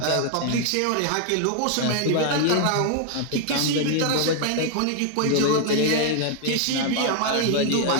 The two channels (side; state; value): both; different; correlation 0.00